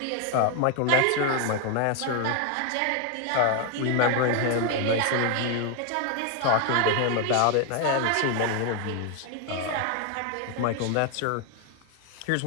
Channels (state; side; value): different; both; correlation 0.01